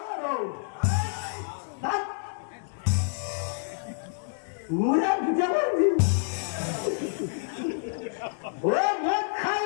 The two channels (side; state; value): right; silent; digital silence